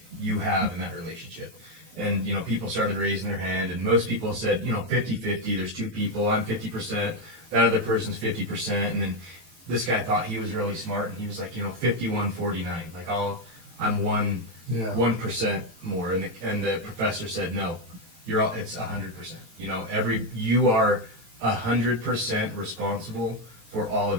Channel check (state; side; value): late; left; 18 ms